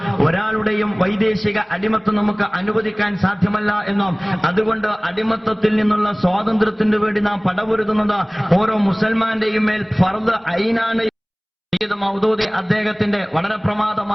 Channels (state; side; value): identical; both; correlation 1.00